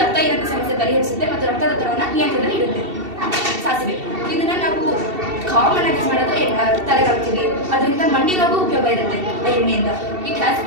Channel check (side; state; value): left; late; 2.7 ms